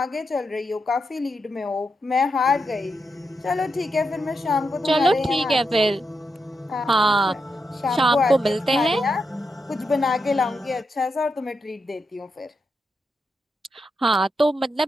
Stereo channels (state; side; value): normal; both; correlation 0.84